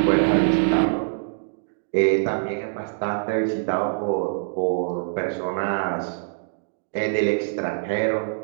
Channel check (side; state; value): left; silent; digital silence